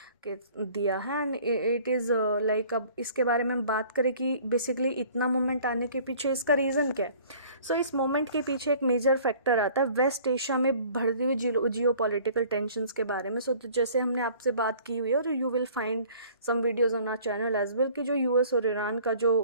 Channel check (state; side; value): inverted; both; correlation -0.52